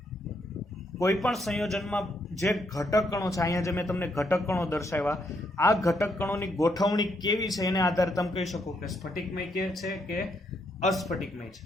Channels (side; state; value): both; normal; correlation 0.75